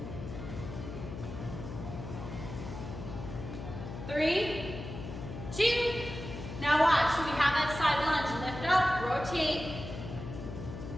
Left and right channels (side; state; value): left; noise; hum, 9 dB below the sound